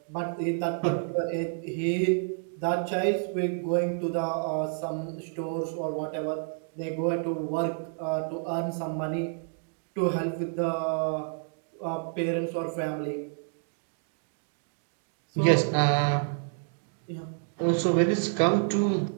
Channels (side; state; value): left; silent; digital silence